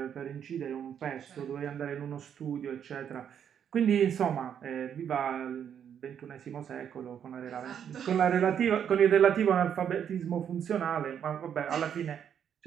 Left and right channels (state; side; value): quieter; left; 8.6 dB